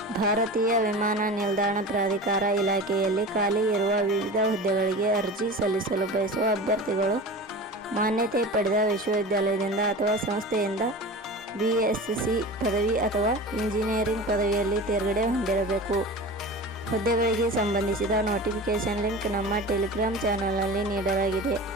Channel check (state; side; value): normal; both; correlation 0.33